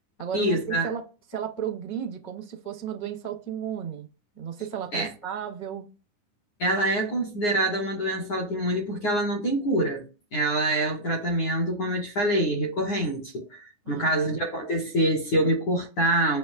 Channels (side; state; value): right; late; 9.7 ms